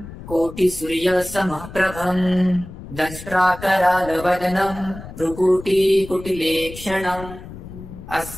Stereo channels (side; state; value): left; noise; rumble, 14 dB below the sound